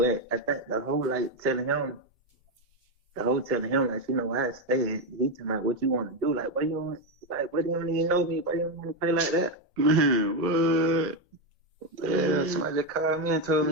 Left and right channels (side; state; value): both; normal; correlation 0.07